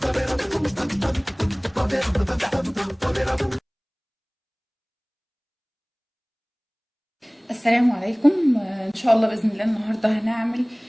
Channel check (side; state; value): both; identical; correlation 1.00